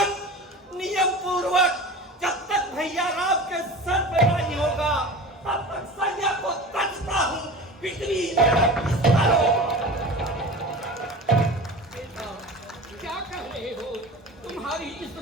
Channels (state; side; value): normal; both; correlation 0.35